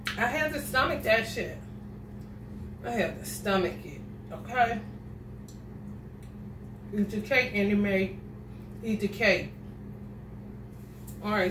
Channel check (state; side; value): identical; both; correlation 1.00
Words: I had to stomach that shit. I had to stomach it. Okay? Eat your cake and you may eat the cake. All